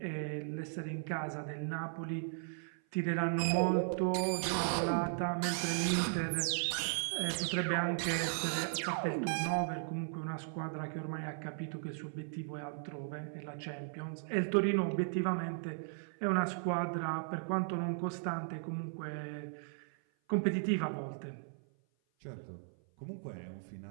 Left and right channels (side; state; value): left; silent; 53 dB below the other